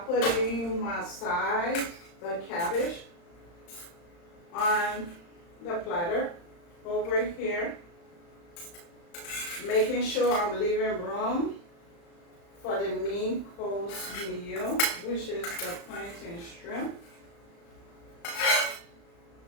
putting my side, the cabbage, on the platter over here, making sure I'm leaving room for the main course meal, which is the plantain shrimp.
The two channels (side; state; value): right; late; 35 ms